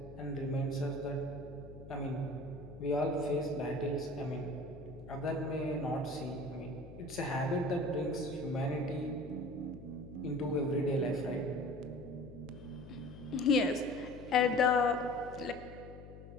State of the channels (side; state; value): left; noise; hum, 15 dB below the sound